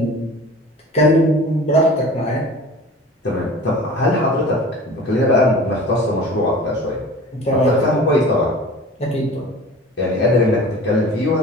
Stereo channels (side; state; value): both; normal; correlation 0.41